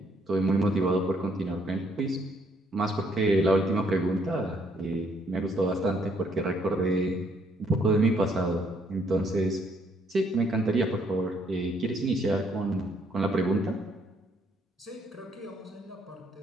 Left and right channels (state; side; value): normal; both; correlation 0.69